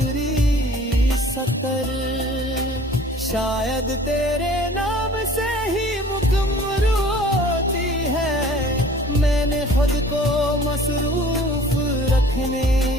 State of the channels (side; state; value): both; normal; correlation 0.49